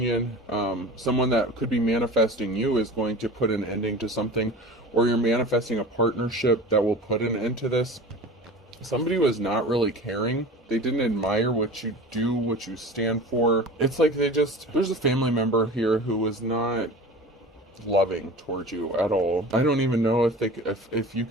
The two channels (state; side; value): normal; both; correlation 0.36